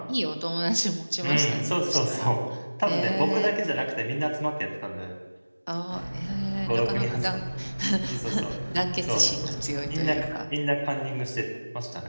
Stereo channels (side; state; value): both; inverted; correlation -1.00